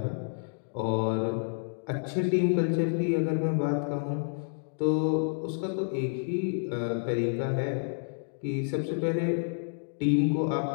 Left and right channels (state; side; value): silent; right; digital silence